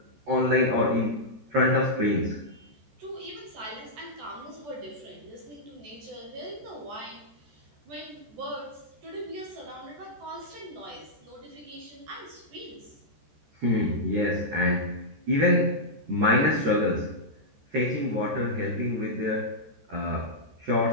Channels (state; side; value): late; left; 14 ms